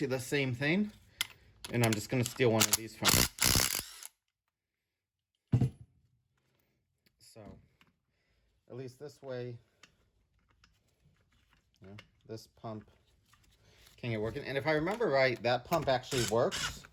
the same thing, and I'm just gonna steal one of these from it. So at least this way, you know, this pump can get working. And if I remember right, that pump actually works,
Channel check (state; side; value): identical; both; correlation 1.00